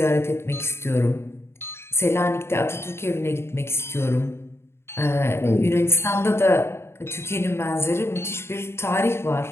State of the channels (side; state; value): right; late; 0.12 ms